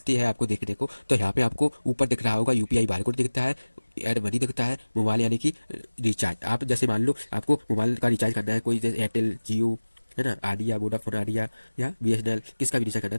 है आपको देखने को। तो यहाँ पे आपको ऊपर दिख रहा होगा यूपीआई बारकोड दिखता है, एड मनी दिखता है, मोबाइल यानी कि रिचार्ज। आप जैसे मान लो आपको मोबाइल का रिचार्ज करना है, कोई जैसे एयरटेल, जियो, है ना, आइडिया, वोडाफोन आइडिया या बीएसएनएल, किसका भी रिचार्ज करना है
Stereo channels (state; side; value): inverted; both; correlation -1.00